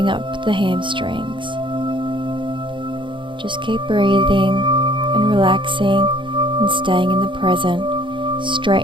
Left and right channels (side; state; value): left; late; 0.24 ms